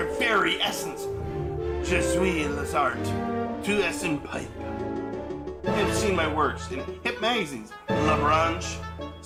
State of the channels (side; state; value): both; identical; correlation 1.00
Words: very essence. Je suis les arts, tout est in pipe. You have seen my works in hip magazines, La Branche,